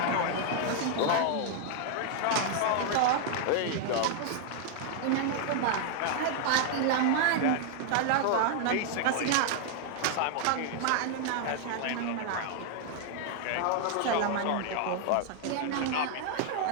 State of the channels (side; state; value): both; different; correlation 0.00